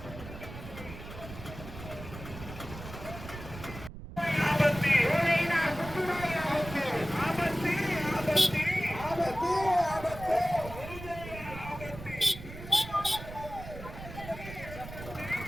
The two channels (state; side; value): noise; right; rumble, 12 dB below the sound